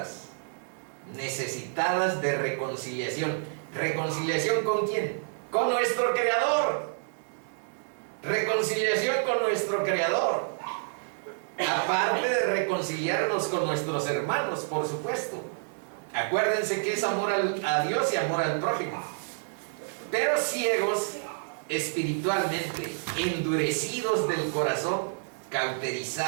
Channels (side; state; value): left; silent; 59 dB below the other